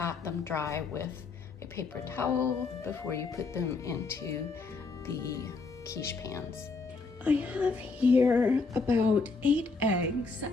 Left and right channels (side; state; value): right; quieter; 4.2 dB